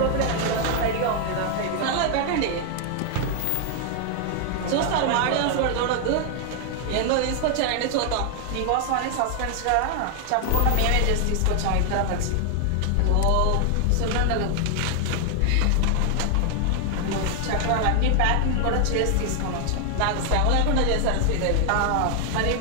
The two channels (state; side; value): different; both; correlation 0.00